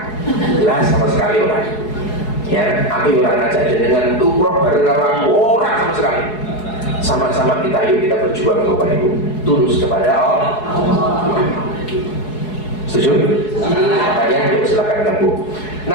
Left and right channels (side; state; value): right; late; 4.7 ms